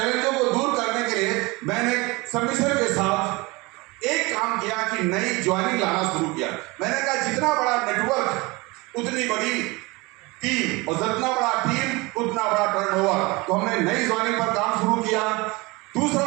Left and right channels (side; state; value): left; quieter; 24.3 dB